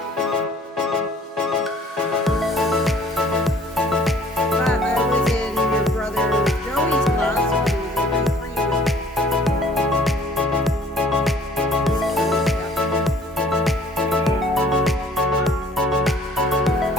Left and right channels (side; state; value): both; normal; correlation 0.55